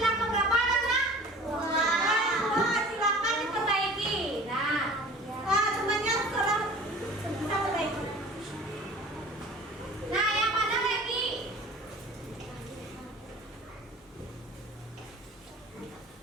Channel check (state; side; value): normal; both; correlation 0.43